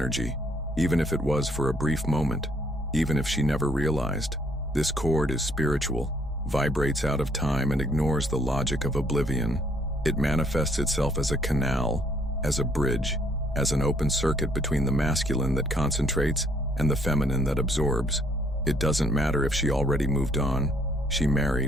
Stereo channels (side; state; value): both; normal; correlation 0.66